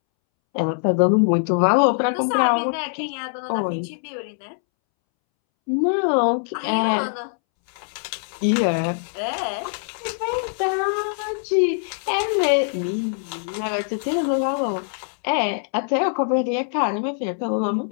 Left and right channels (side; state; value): right; silent; 64 dB below the other